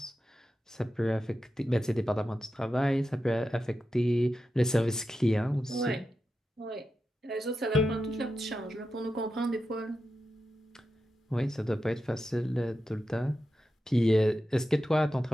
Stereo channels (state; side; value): normal; both; correlation 0.90